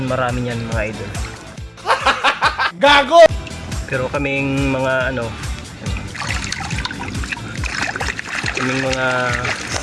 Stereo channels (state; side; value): identical; both; correlation 1.00